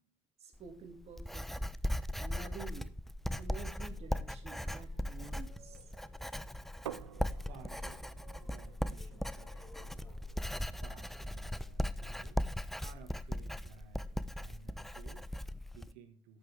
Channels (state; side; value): normal; both; correlation 0.93